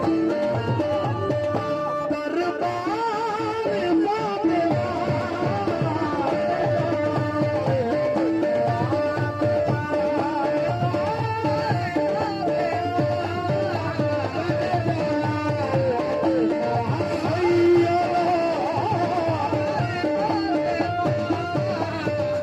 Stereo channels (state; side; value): identical; both; correlation 1.00